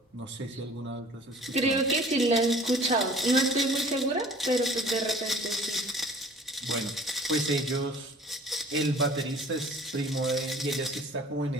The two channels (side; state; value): both; normal; correlation 0.49